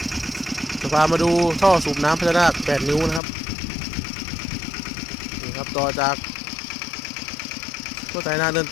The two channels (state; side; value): drops out; right; at 3.2 s